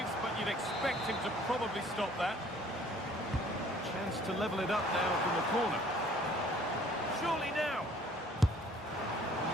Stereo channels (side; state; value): both; normal; correlation 0.56